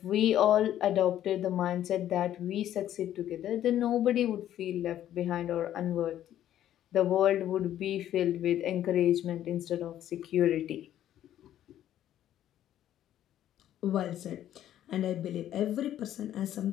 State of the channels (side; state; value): right; quieter; 11.8 dB